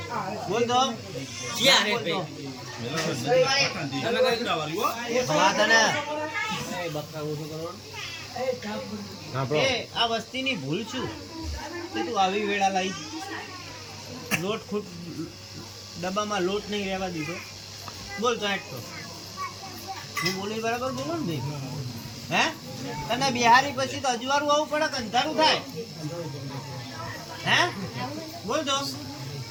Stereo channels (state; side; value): identical; both; correlation 1.00